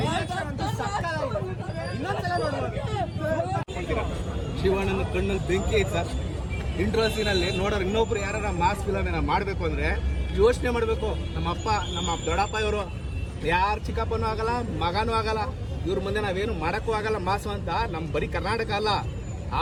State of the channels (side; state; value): both; identical; correlation 1.00